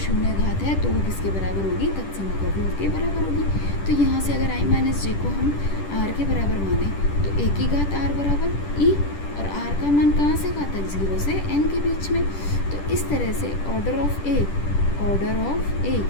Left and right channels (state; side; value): late; right; 10 ms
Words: घात है तो वो किसके बराबर होगी, तत्समक अवयव के बराबर होगी। तो यहाँ से अगर आई माइनस जे को हम आर के बराबर माने तो ए की घात आर बराबर ई, और आर का मान कहाँ से कहाँ तक, 0 से n के बीच में। तो इस तरह से order of A